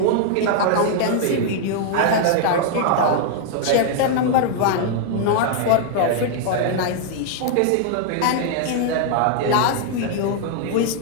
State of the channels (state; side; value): different; both; correlation 0.00